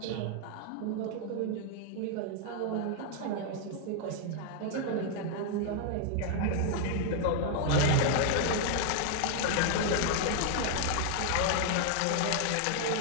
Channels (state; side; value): different; both; correlation 0.00